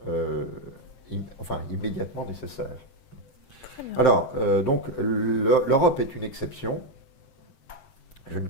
immédiatement nécessaires. Alors, donc, l'Europe est une exception. Je ne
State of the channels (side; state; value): right; late; 7.8 ms